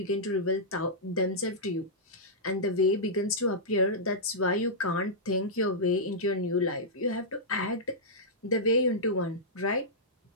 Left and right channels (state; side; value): normal; both; correlation -0.12